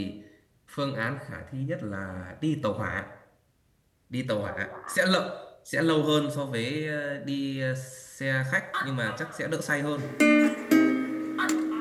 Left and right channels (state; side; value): identical; both; correlation 1.00